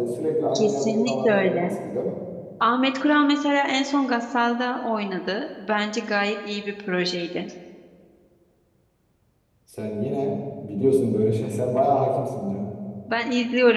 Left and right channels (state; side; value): identical; both; correlation 1.00